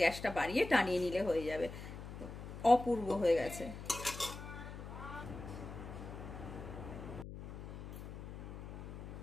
গ্যাসটা বাড়িয়ে টানিয়ে নিলে হয়ে যাবে। অপূর্ব হয়ে গেছে।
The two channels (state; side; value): noise; left; hum, 10 dB below the sound